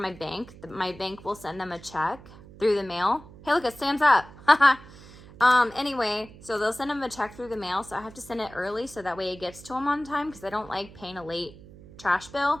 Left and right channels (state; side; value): noise; right; hum, 19 dB below the sound